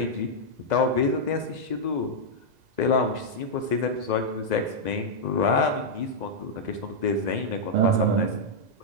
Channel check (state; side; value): late; left; 2.0 ms